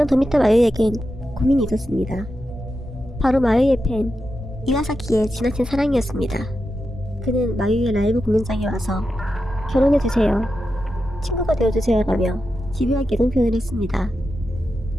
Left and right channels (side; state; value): both; normal; correlation 0.89